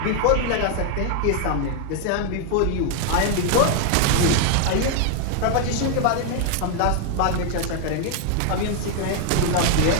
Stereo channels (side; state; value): both; different; correlation 0.00